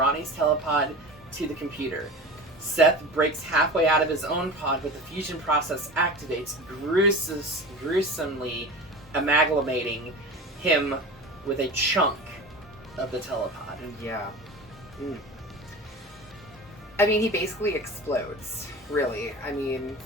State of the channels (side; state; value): both; normal; correlation 0.32